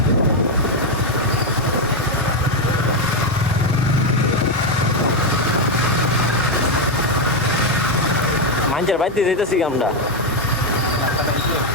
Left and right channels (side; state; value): both; normal; correlation 0.04